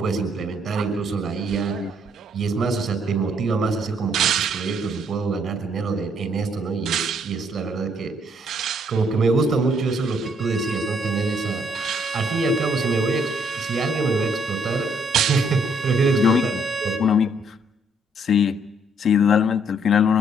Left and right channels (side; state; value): both; normal; correlation 0.68